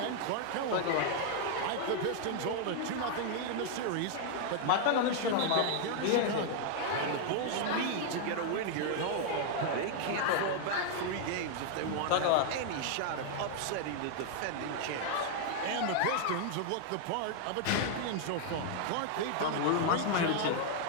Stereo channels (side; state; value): both; different; correlation 0.00